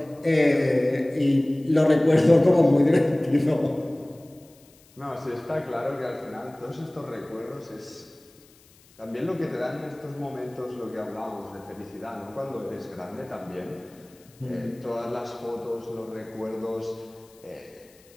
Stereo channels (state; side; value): noise; left; hiss, 28 dB below the sound